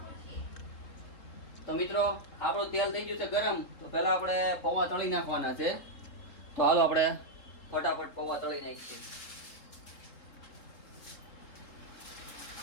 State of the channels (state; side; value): late; right; 3.7 ms